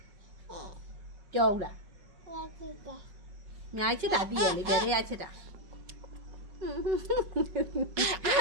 ကြောက်လားညာချစ်တာတည်ရလေဘယ်ထက်ချစ်တာ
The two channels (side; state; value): left; late; 5.3 ms